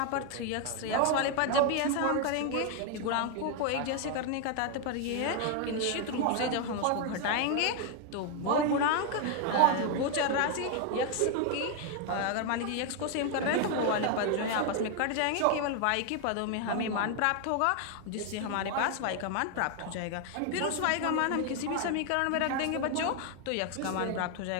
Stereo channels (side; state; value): both; different; correlation 0.00